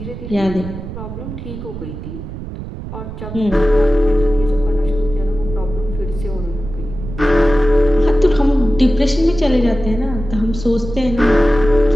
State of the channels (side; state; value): right; noise; rumble, 10 dB below the sound